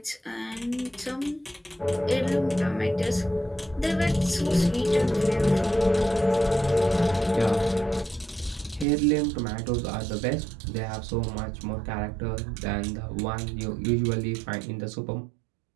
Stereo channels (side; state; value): left; drops out; at 8.8 s